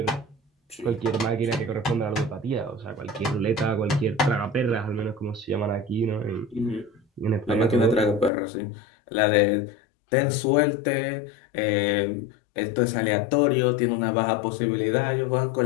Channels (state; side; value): drops out; right; at 8.3 s